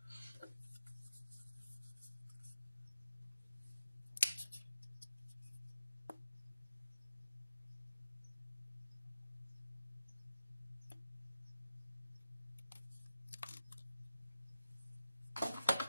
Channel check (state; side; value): inverted; both; correlation -0.89